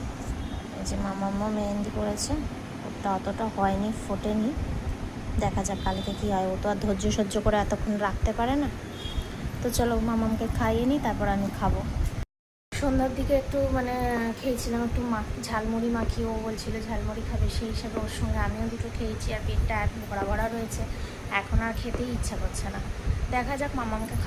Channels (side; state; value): both; identical; correlation 1.00